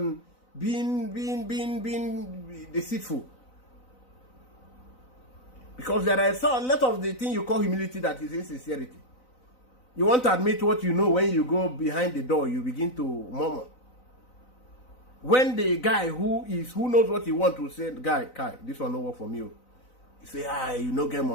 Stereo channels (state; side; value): late; right; 4.0 ms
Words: being deceitful? Because there are a lot of the thing you call humility that is insincerity. You want to admit what you know. When you go behind the door, you begin to murmur. When the guy who knows what he wants to say, guy, this one no work for me. You say, you no get